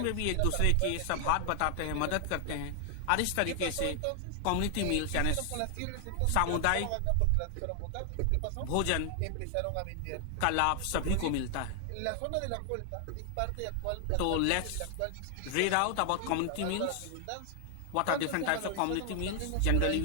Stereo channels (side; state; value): both; different; correlation 0.00